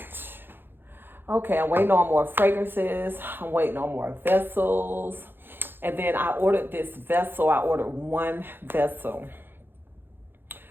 Okay, I'm waiting on more fragrances. I'm waiting on more vessels. And then I ordered this vessel. I ordered one vessel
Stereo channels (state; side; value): late; left; 0.10 ms